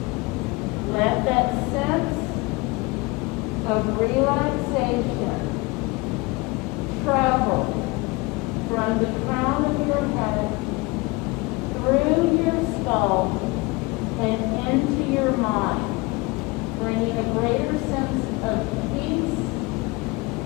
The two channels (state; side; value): quieter; right; 24.6 dB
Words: Let that sense of relaxation travel from the crown of your head through your skull and into your mind, bringing a greater sense of peace